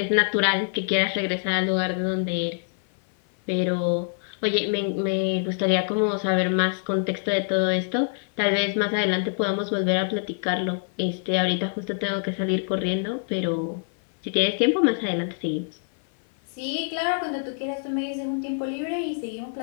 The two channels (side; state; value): right; silent; 56 dB below the other